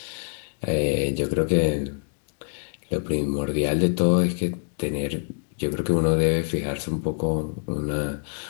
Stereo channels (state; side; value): silent; right; digital silence